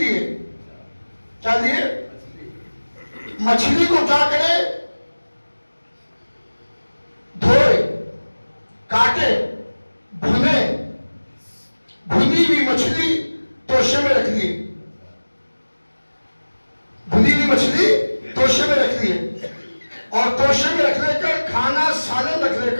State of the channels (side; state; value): both; inverted; correlation -1.00